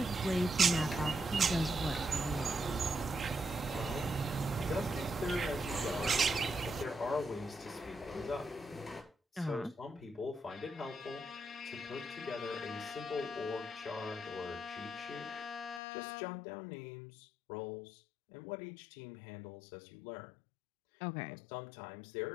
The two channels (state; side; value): drops out; right; at 15.8 s